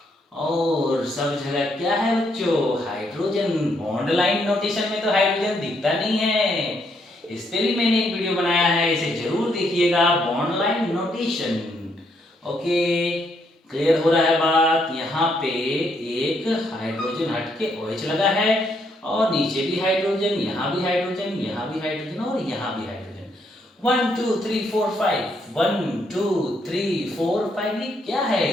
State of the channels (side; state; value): both; normal; correlation 0.74